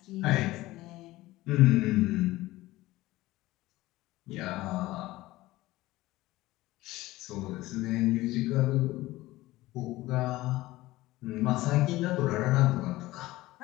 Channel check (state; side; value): quieter; right; 18.0 dB